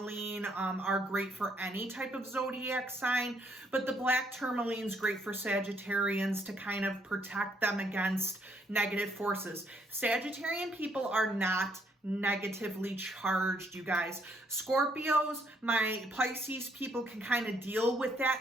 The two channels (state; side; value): normal; both; correlation 0.70